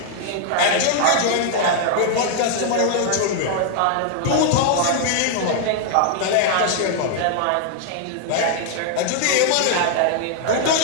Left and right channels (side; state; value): both; different; correlation 0.00